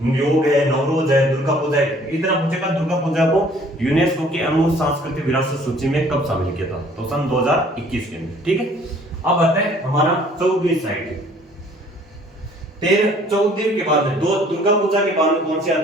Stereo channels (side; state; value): both; normal; correlation 0.56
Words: योग है, नवरोज है, दुर्गा पूजा है, इतना पूछेगा। दुर्गा पूजा को यूनेस्को की अमूर्त सांस्कृतिक विरासत सूची में कब शामिल किया था? तो सन 2021 के अंदर, ठीक है। अब आता है हमारा 14वीं साइट। 14 के बाद में दो दुर्गा पूजा के बाद में कौन से